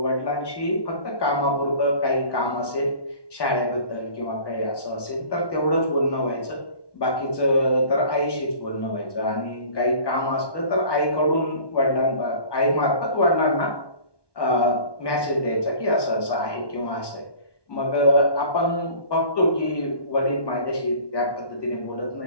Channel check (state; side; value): late; right; 1.2 ms